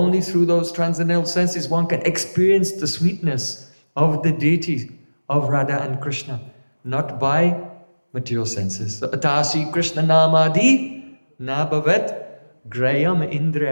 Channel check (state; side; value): inverted; both; correlation -1.00